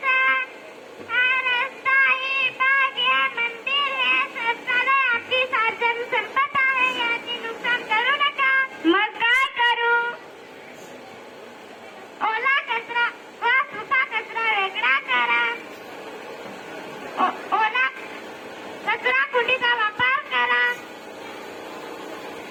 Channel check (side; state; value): both; identical; correlation 1.00